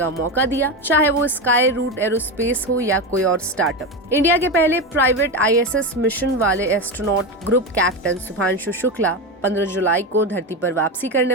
मौका दिया, चाहे वो स्काई रूट एरोस्पेस हो या कोई और स्टार्टअप। इंडिया के पहले प्राइवेट ISS मिशन वाले astronaut group captain Shubhanshu Shukla 15 जुलाई को धरती पर वापसी करने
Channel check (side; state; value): both; normal; correlation 0.17